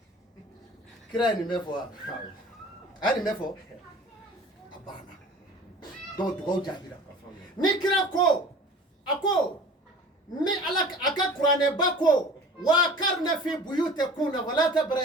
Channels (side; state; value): both; normal; correlation 0.43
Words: kira ni mefo ani mefo abana do do jabira ni kira ko ako ni alak aka qur'ane bako wa karna fi buyutikuna wala